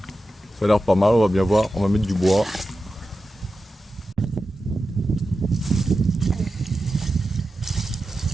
pas mal, on va bien voir, on va mettre du bois.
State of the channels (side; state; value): both; normal; correlation 0.92